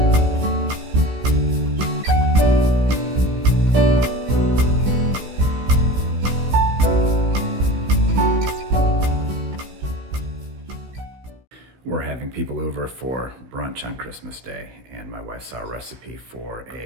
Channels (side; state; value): left; late; 16 ms